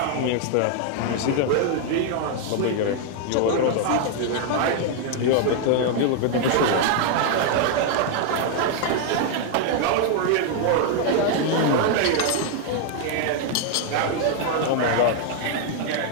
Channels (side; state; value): both; different; correlation 0.00